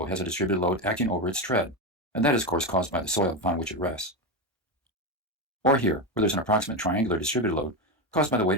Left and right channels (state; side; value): normal; both; correlation 0.14